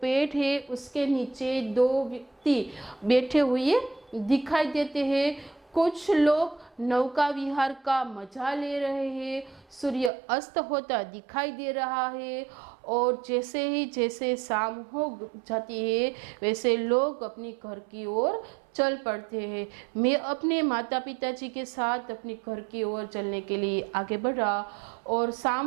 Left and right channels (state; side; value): drops out; left; at 10.1 s